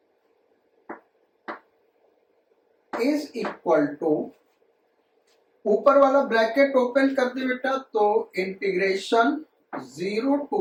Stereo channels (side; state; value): both; identical; correlation 1.00